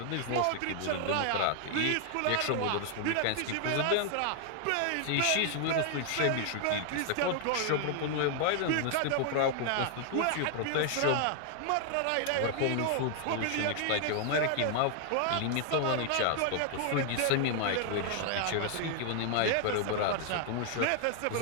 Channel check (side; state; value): both; different; correlation 0.00